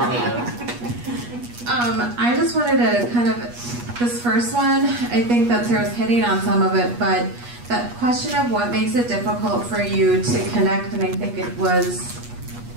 I just wanted to kind of, this first one, I think that Sarah's hitting on some of it, but that question of what makes it difficult for you to connect, and I think it was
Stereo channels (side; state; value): left; late; 8.3 ms